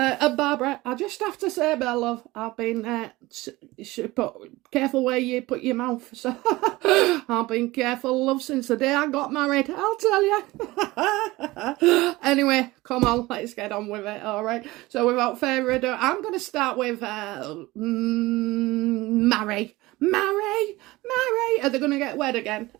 Barbara, I just have to say, my love, I've been careful where you put your mouth. So I've been careful, love, since the day I got married. I'll tell you. Anyway, come on, let's get on with it. All right. So without further ado, I'm going to start with marry. Are they going to get wed again?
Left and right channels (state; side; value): quieter; left; 19.9 dB